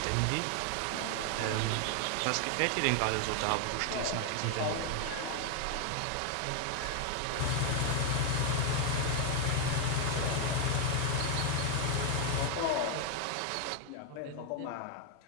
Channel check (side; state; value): both; different; correlation 0.01